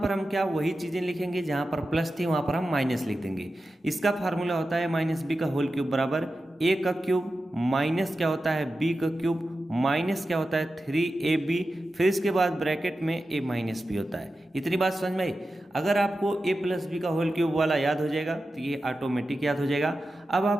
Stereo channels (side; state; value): both; normal; correlation 0.92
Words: हम क्या वही चीज़ें लिखेंगे, जहाँ पर प्लस थी वहाँ पर हम माइनस लिख देंगे। इसका फार्मूला होता है माइनस बी का होल क्यूब बराबर a का क्यूब माइनस क्या होता है b का क्यूब माइनस क्या होता है 3ab, फिर इसके बाद ब्रैकेट में a माइनस बी होता है। इतनी बात समझ में आई। अगर आपको a प्लस बी का होल क्यूब वाला याद हो जाएगा तो ये ऑटोमेटिक याद हो जाएगा। अब